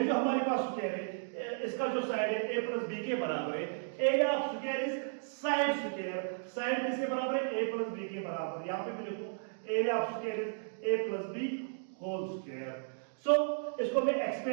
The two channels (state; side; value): silent; left; digital silence